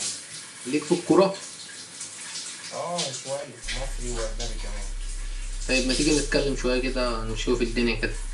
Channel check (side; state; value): both; identical; correlation 1.00